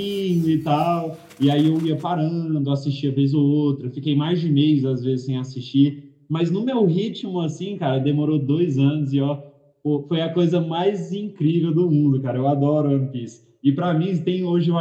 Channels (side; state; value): both; identical; correlation 1.00